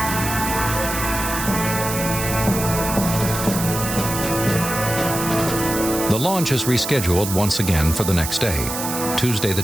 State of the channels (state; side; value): noise; right; hiss, 5 dB below the sound